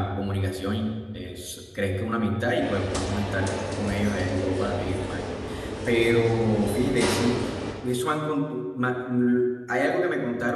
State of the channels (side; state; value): both; identical; correlation 1.00